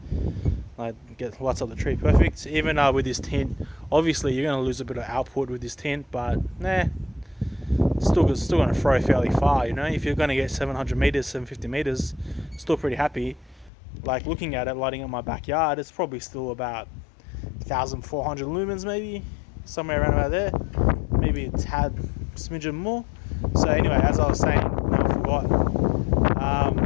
Like get lights up the tree perfect. Even with this tint, obviously you're going to lose a bit of output with this tint, but nah, still going to throw fairly far, you know. If you're going to get 700 meters, 750 meters, still pretty happy. Like looking at it, lighting up my backyard, it's probably still about 1,400 lumens, maybe somewhere around about there, maybe a tad smidgen more. So anyway, as I was saying, no, I forgot.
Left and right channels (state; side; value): drops out; right; at 13.7 s